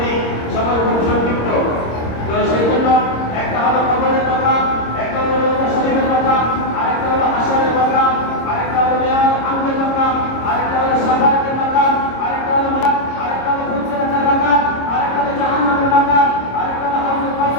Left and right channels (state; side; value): late; right; 26 ms